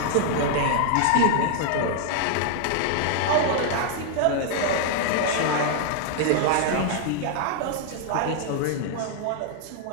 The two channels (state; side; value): different; both; correlation 0.00